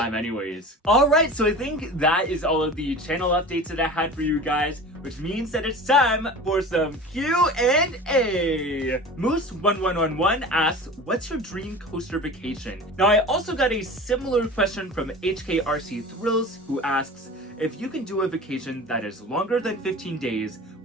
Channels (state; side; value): normal; both; correlation 0.36